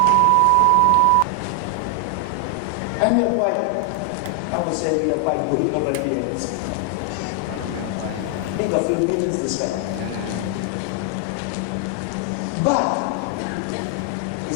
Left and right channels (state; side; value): different; both; correlation 0.00